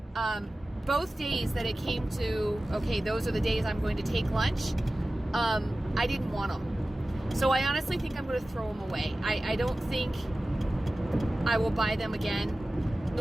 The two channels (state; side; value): normal; both; correlation 0.96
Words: both days that it came to, okay, those are the days I'm going to take lunch, I didn't want them. So I honestly think I'm going to throw them away. I don't think I will buy them again.